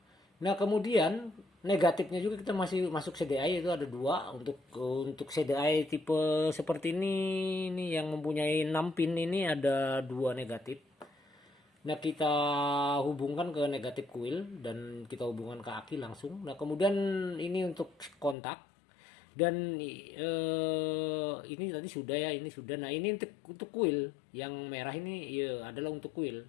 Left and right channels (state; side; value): drops out; right; at 18.4 s